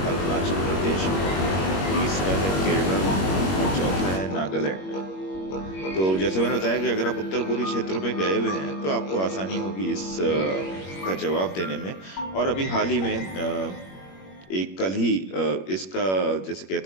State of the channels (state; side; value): late; right; 21 ms